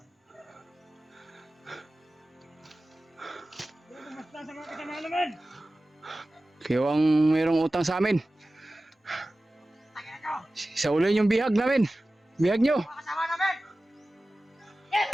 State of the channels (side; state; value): both; normal; correlation 0.96